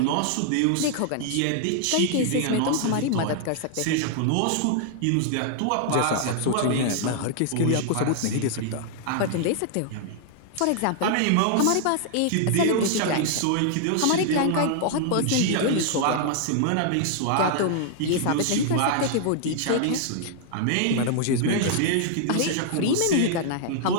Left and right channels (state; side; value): different; both; correlation -0.01